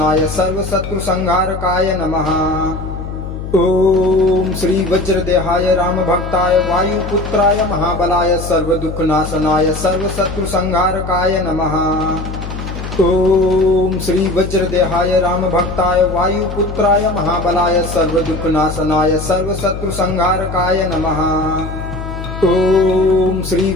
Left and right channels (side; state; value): left; noise; hum, 8 dB below the sound